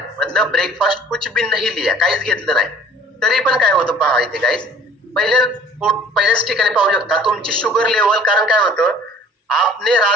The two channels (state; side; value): normal; both; correlation 0.51